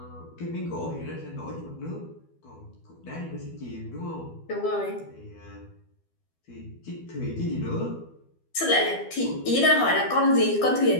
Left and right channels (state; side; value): late; right; 12 ms